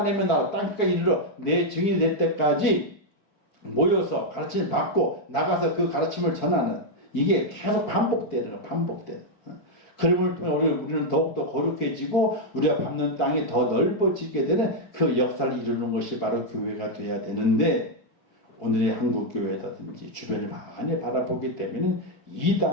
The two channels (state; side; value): late; right; 4.7 ms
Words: 나라 땅까지 이르러 내 증인이 될 때까지 모여서 가르침을 받고 나가서 그 가르침을 전하는 이게 계속 반복되는 거예요. 반복되는. 그럼을 통해 우리는 더욱더 거룩해지고 우리가 밟는 땅이 더 넓어지게 되는 그 역사를 이루는 것이 바로 교회가 돼야 되는데 오늘의 한국 교회라든지 주변을 많이 바라보기 때문에